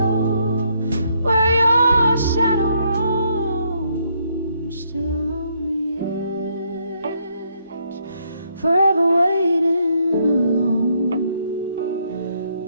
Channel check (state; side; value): inverted; both; correlation -0.73